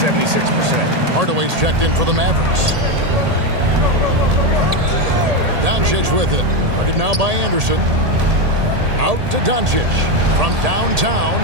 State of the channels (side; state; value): left; late; 1.8 ms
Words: Hardaway's checked in for the Mavericks. Doncic with it. Guarded now by Anderson. Out to Doncic. From downtown,